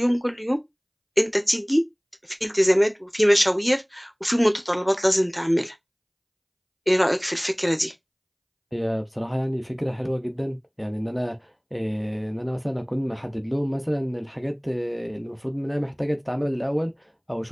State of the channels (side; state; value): both; identical; correlation 1.00